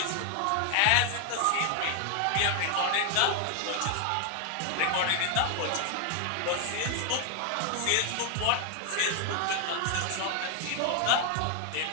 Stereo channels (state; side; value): different; both; correlation 0.00